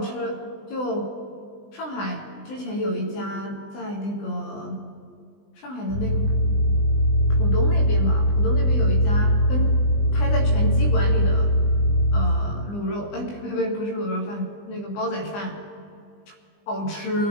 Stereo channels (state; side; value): late; right; 20 ms